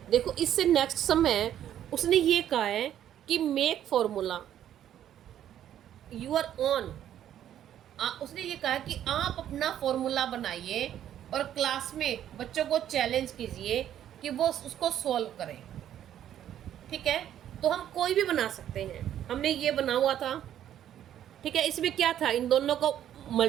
देखो इससे नेक्स्ट सम है, उसने ये कहा है कि मेक फॉर्मूला यूर ओन। उसने ये कहा कि आप अपना फॉर्मूला बनाइए और क्लास में बच्चों को चैलेंज कीजिए कि वो उसको सॉल्व करें, ठीक है। तो हम कोई भी बना सकते हैं, हमने ये बना हुआ था, ठीक है। इसमें क्या था, इन दोनों को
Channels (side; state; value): left; quieter; 10.9 dB